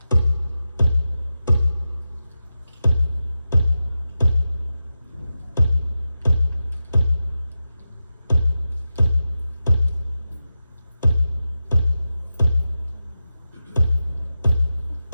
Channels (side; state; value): both; inverted; correlation -0.92